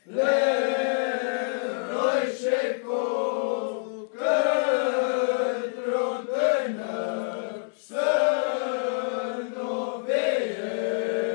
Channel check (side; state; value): right; silent; digital silence